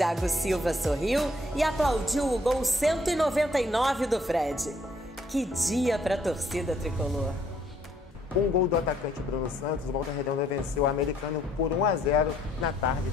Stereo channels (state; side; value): normal; both; correlation 0.66